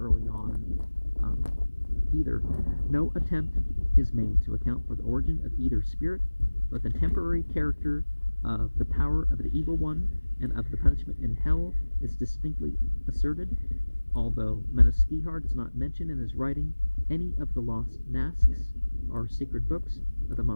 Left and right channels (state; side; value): inverted; both; correlation -1.00